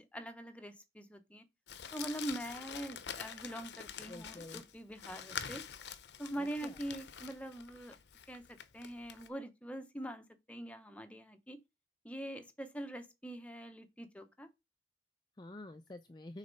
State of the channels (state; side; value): normal; both; correlation 0.69